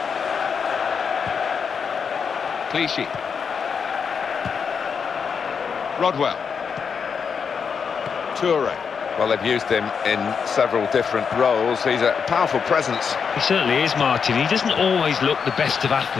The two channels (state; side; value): quieter; right; 6.3 dB